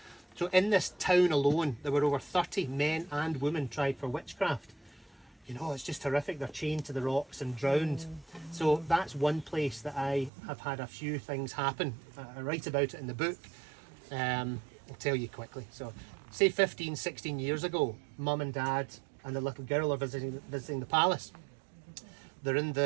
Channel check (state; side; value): drops out; left; at 10.3 s